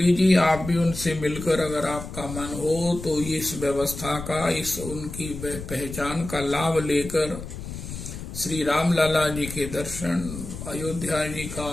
जी, आप भी उनसे मिलकर अगर आपका मन हो तो इस व्यवस्था का, इस उनकी पहचान का लाभ लेकर श्री राम लाला जी के दर्शन, अयोध्या जी का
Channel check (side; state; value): left; noise; rumble, 10 dB below the sound